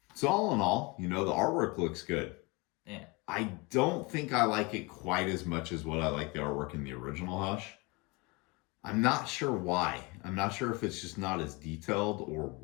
So all in all, the artwork looks good. Yeah. I don't think I like it quite as much as what I like the artwork in the original Hush. I'm not sure why. I'm not sure if it's just not as detailed or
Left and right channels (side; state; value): right; quieter; 26.0 dB